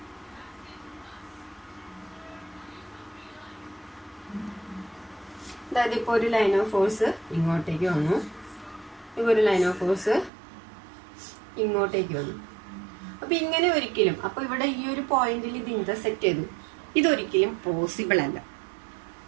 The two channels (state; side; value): drops out; left; at 10.3 s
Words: അതായത് ഇപ്പോൾ ഒരു ലൈൻ ഓഫ് ഫോഴ്സ് ഇങ്ങോട്ടേക്ക് വന്നു, ഇപ്പോൾ ഒരു ലൈൻ ഓഫ് ഫോഴ്സ് ഇങ്ങോട്ടേക്ക് വന്നു. അപ്പൊ ഇങ്ങനെ ഒരിക്കലും, അപ്പൊ ഇവിടെ ഈ ഒരു പോയിന്റിൽ ഇത് ഇന്റർസെക്ട് ചെയ്തു, ഇതൊരിക്കലും പോസിബിൾ അല്ല.